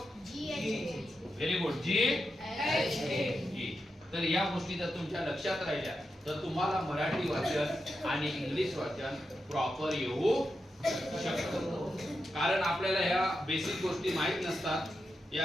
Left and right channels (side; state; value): both; normal; correlation 0.88